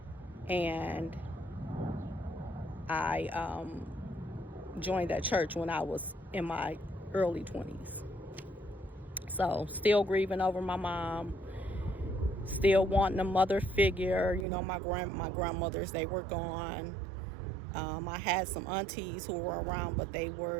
and I joined that church when I was in my early 20s. So, still grieving over my mom, still wanting a mother figure. You know, my grandmothers, they were gone. I had some aunties who were around, but they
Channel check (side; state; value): left; drops out; at 14.5 s